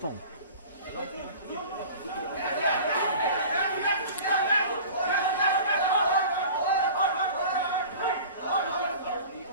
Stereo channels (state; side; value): inverted; both; correlation -0.41